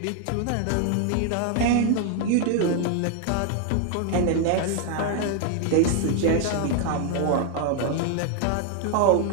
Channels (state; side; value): different; both; correlation 0.00